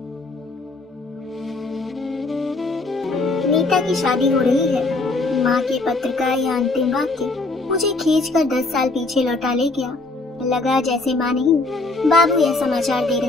नीता की शादी हो रही है। माँ के पत्र का यह अंतिम वाक्य मुझे खींचकर 10 साल पीछे लौटा ले गया। लगा जैसे माँ नहीं बाबू यह समाचार दे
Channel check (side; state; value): right; quieter; 3.3 dB